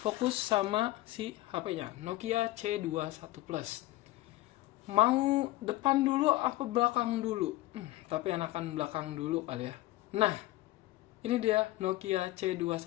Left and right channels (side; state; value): right; quieter; 17.5 dB